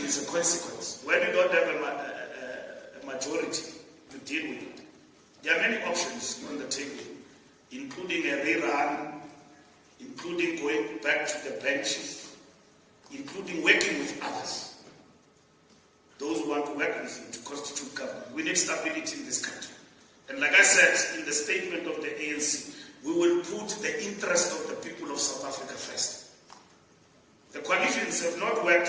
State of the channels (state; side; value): identical; both; correlation 1.00